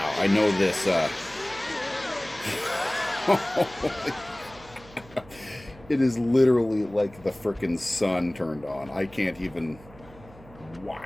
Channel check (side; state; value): right; noise; hum, 22 dB below the sound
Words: I know this. It is literally like the frickin' sun turned on. I can't even.